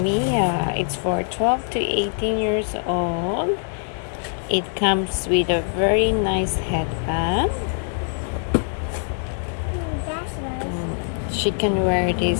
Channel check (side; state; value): right; silent; 59 dB below the other